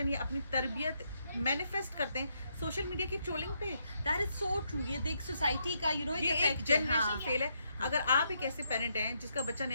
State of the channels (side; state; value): both; inverted; correlation -0.77